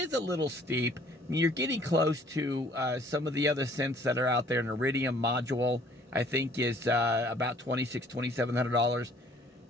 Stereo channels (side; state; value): both; normal; correlation 0.57